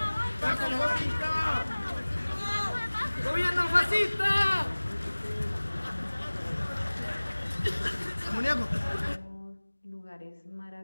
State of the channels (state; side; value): inverted; both; correlation -1.00